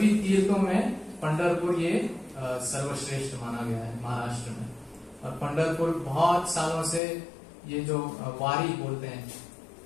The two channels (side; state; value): right; drops out; at 7.0 s